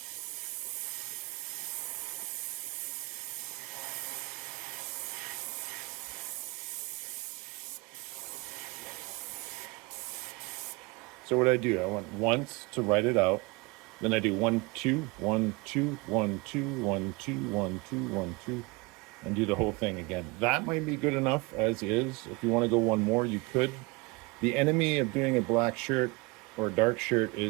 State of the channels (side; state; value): left; quieter; 26.6 dB